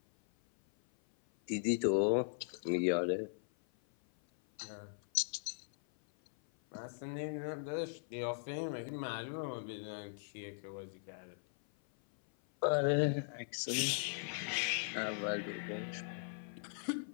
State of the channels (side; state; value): right; silent; 52 dB below the other